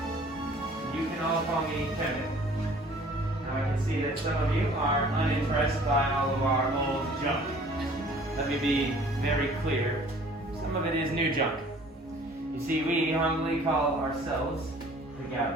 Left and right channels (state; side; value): normal; both; correlation 0.52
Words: You can all call me Kevin. Now I can see that some of you are unimpressed by all of our old junk. Let me be very clear. Some of it is new junk. You see, we humbly call ourselves the